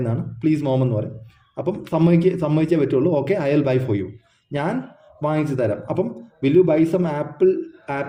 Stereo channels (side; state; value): both; identical; correlation 1.00